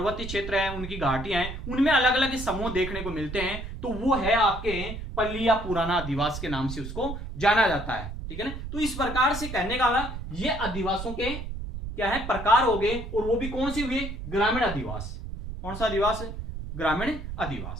क्षेत्र है, उनकी घाटियां हैं, उनमें अलग अलग समूह देखने को मिलते हैं, तो वो है आपके पल्लिया पुराना आदिवास के नाम से उसको जाना जाता है, ठीक है ना। तो इस प्रकार से कहने का ये आदिवासों के क्या है? प्रकार हो गए, और वो भी कौन से हुए? ग्रामीण आदिवास। कौन सा आदिवास है? ग्रामीण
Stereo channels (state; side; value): noise; right; rumble, 8 dB below the sound